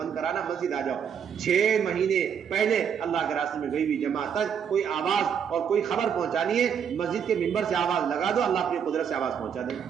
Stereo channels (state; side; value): quieter; left; 7.7 dB